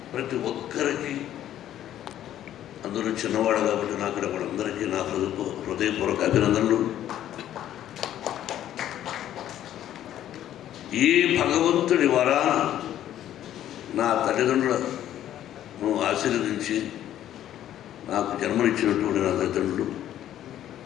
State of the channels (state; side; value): quieter; right; 11.8 dB